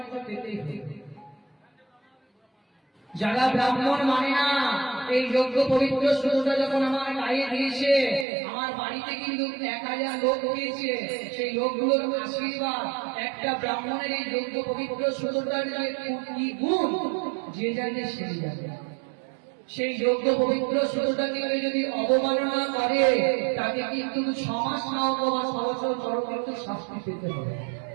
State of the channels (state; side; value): drops out; left; at 8.2 s